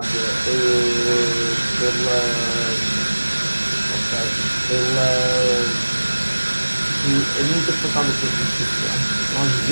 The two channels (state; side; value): inverted; both; correlation -1.00